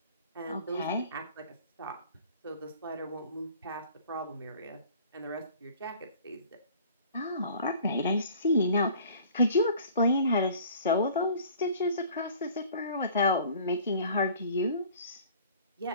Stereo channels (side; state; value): both; inverted; correlation -0.49